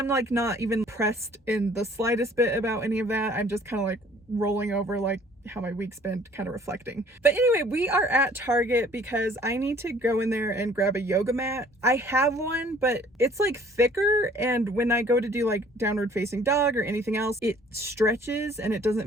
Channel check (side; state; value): both; normal; correlation 0.55